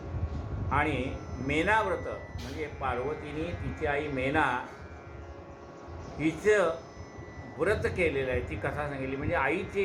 आणि मेनाव्रत म्हणजे पार्वतीने तिची आई मेना हिचं व्रत केलेलं आहे, ती कथा सांगितली. म्हणजे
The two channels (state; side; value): identical; both; correlation 1.00